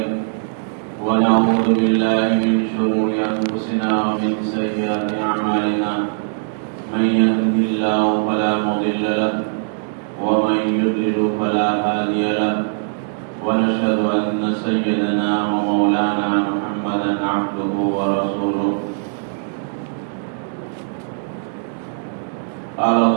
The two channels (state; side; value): silent; left; digital silence